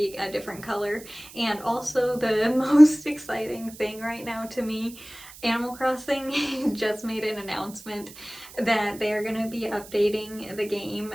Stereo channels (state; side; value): noise; right; hiss, 18 dB below the sound